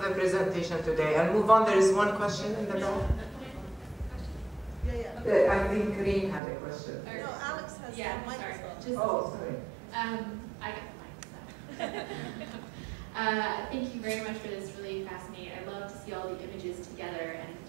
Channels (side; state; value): left; drops out; at 6.4 s